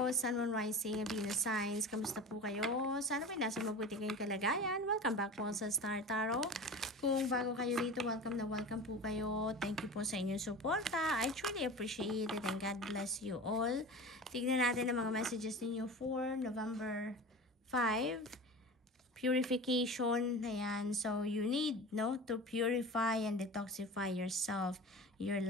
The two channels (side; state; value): both; normal; correlation 0.33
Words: Sun, Moon, Rising, Venus signs. Kamusta po kayo? Sana may nasa mabuti kayong kalagayan. Welcome back po sa Star Tarot. Kung bago kayo rito, welcome na welcome po kayo. Thank you po sa inyong suporta. I truly appreciate it and God bless you all. Tignan natin ang mga messages ninyo for November 5. Purification. Ayan. So, you need to purify and detoxify yourself, your